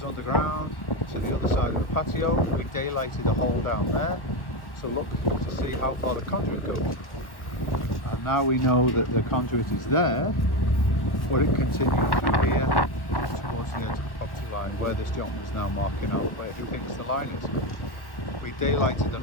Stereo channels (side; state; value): right; late; 1.1 ms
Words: underground to the other side of the patio. We daylighted a hole down there. So look to see how far the conduit goes. And now we know that the conduit is there, but it continues through here towards the edge of the property line where this gentleman is now marking out where he thinks the line is. We daylighted